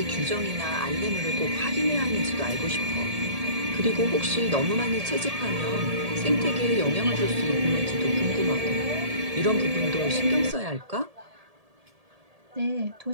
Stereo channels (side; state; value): left; late; 1.7 ms